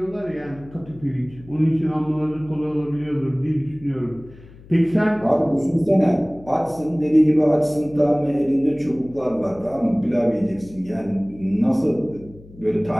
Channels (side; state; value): left; noise; hum, 21 dB below the sound